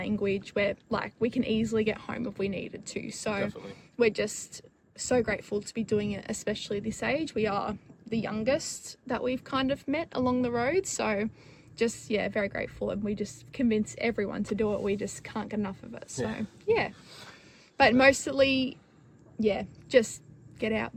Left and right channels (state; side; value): identical; both; correlation 1.00